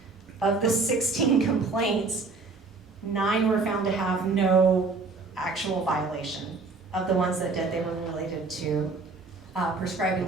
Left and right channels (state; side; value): quieter; left; 4.0 dB